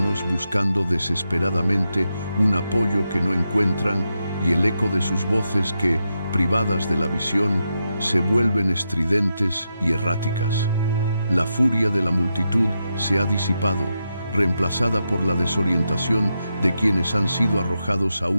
buscando desesperadamente un apoyo que no encuentran y el eco de sus voces que, privadas de la visión, se vuelven estridentes y erráticas. La furia de la multitud se ha disipado, reemplazada por la desorientación de quienes han sido arrojados a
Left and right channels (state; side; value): inverted; both; correlation -0.86